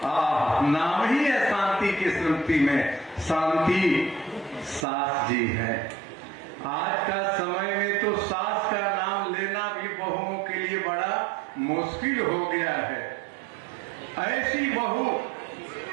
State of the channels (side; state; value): left; drops out; at 4.9 s